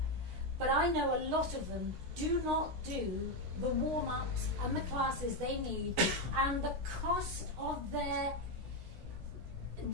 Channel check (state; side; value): late; left; 16 ms